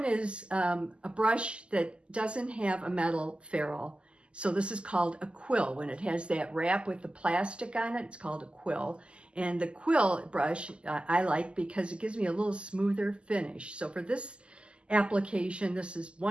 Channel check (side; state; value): left; late; 0.052 ms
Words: is a brush that doesn't have a metal ferrule. So this is called a quill. When it has that wrap with the plastic on it, it's called a quill. And the quill brush I like because it gives me a little smoother finish. So for this application, this is